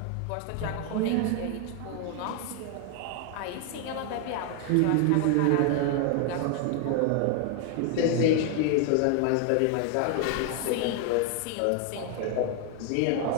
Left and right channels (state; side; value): different; both; correlation 0.00